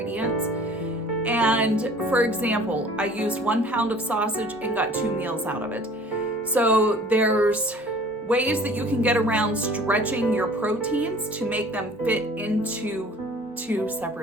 And for example, I used 1 pound of sausage and got 2 meals out of it. So there's ways that you can get around stretching your proteins to make them fit into 2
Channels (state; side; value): normal; both; correlation 0.49